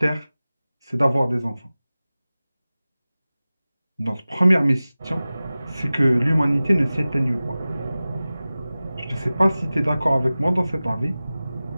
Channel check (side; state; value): both; inverted; correlation -0.97